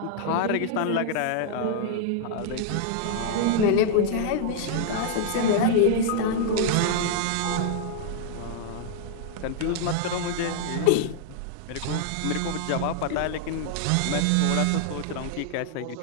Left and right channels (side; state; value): both; different; correlation -0.01